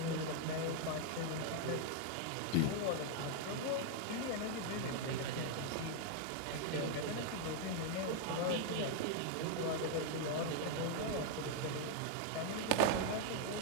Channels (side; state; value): both; different; correlation 0.00